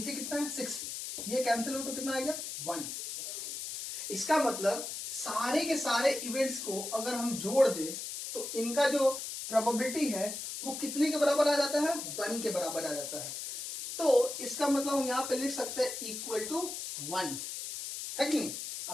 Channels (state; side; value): noise; left; hiss, 6 dB below the sound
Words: कितना है? 6, ये कैंसिल हो तो कितना आ गया? 1। इसका मतलब सारे के सारे इवेंट्स को अगर हम जोड़ दे तो इनका जो प्रोबेबिलिटी है वो कितने के बराबर आ जाता है? 1 के बराबर आ जाता है। तो इसका मतलब हम यहाँ पे लिख सकते हैं इक्वल टू 1, है कि नहीं?